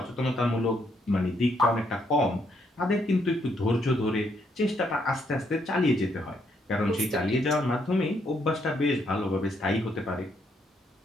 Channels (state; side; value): normal; both; correlation 0.74